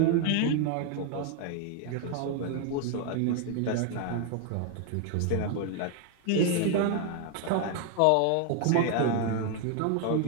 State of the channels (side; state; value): both; different; correlation 0.01